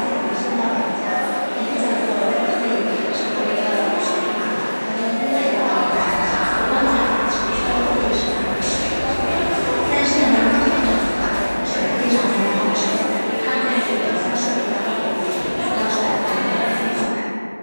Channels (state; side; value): inverted; both; correlation -1.00